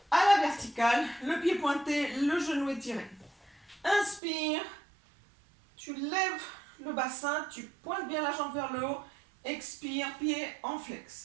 à la verticale, le pied pointé, le genou étiré. Inspire, tu lèves le bassin, tu pointes bien la jambe vers le haut expire, pied en flex.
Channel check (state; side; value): drops out; left; at 4.2 s